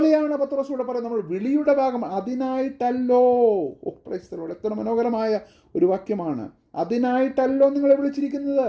പത്രോസ് ഇവിടെ പറയുന്നത്, നമ്മൾ വിളിയുടെ ഭാഗം. അതിനായിട്ടല്ലോ. Praise the lord. എത്ര മനോഹരമായ ഒരു വാക്യമാണ്. അതിനായിട്ടല്ലോ നിങ്ങളെ വിളിച്ചിരിക്കുന്നത്.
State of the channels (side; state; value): both; identical; correlation 1.00